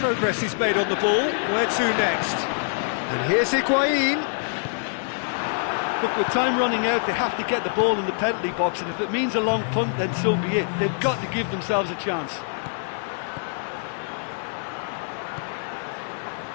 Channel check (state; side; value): silent; right; 62 dB below the other